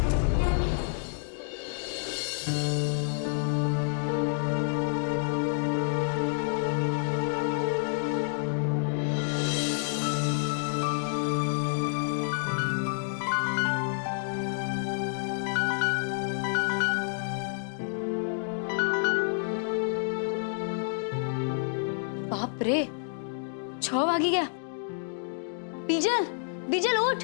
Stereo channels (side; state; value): right; silent; digital silence